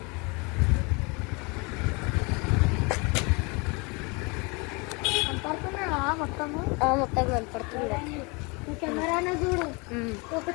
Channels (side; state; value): right; quieter; 29.2 dB